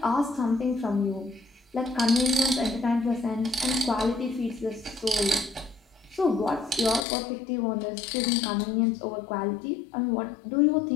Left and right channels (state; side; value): drops out; right; at 7.1 s